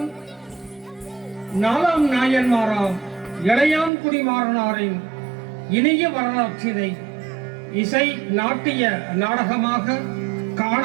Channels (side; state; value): left; drops out; at 3.9 s